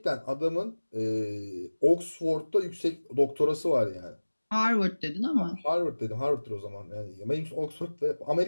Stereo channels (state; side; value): inverted; both; correlation -1.00